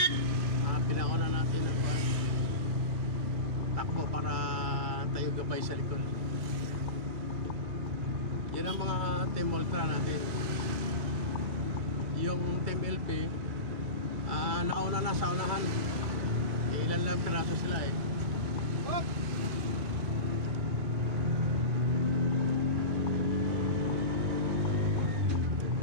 Pinauna natin ang takbo para tayo gabay sa likod. Yan ang mga Team Ultra natin. Yung Team LP nauna na sa unahan. Ilan lang piraso sila eh.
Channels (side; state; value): left; late; 1.1 ms